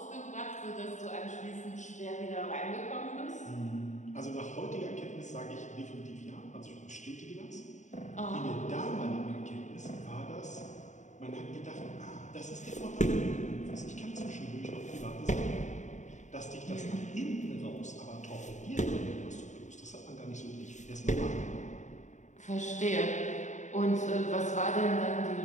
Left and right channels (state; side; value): late; right; 0.35 ms